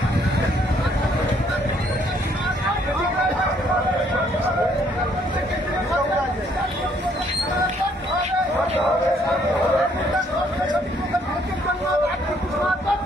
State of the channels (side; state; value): both; normal; correlation 0.66